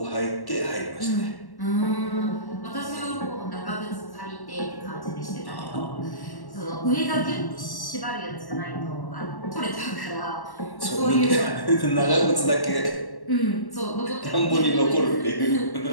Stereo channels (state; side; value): late; right; 1.1 ms